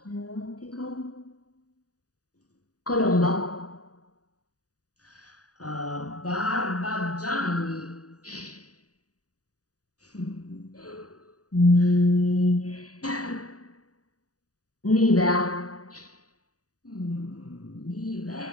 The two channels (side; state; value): right; late; 0.67 ms